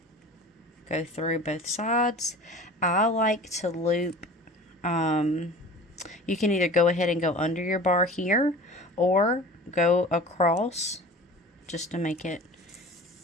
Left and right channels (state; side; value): normal; both; correlation 0.40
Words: Go through both sides. I like to loop, you can either go ahead and go under your bar here, or go across, just to make it